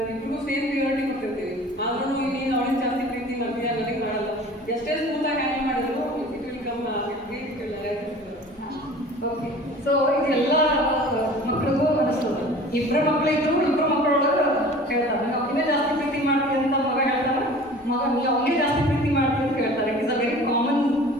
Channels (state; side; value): normal; both; correlation 0.43